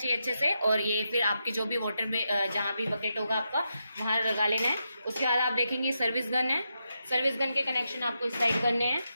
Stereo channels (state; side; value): inverted; both; correlation -0.85